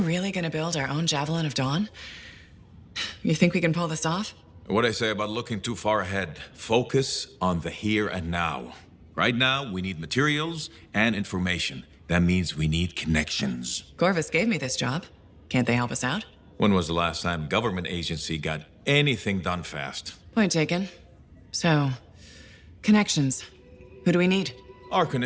gonna build our own Javelin of Dawn? You think we can pull this off? What I say about looking too far ahead. Focus on the here and now. Right now, we need materials and information. That means we need connections. Corvus gave me this job. Can't they help us out? When was the last time a government agency got anything done fast? Point taken. So, connections. Who do we need?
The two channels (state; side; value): identical; both; correlation 1.00